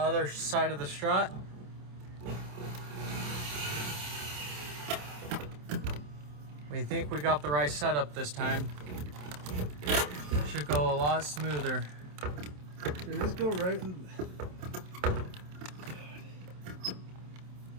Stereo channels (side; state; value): left; late; 27 ms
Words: side of the strut. We think we got the right setup this time. Should go a lot smoother. Did this go right in?